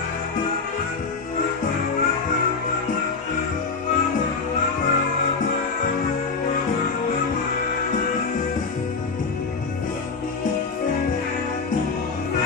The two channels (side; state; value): right; quieter; 4.7 dB